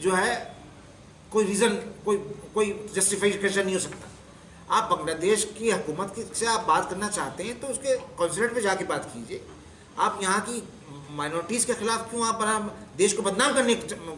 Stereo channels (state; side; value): identical; both; correlation 1.00